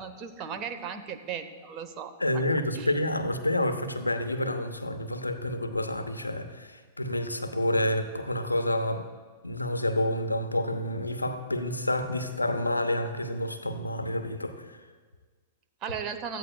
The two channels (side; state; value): both; inverted; correlation -0.72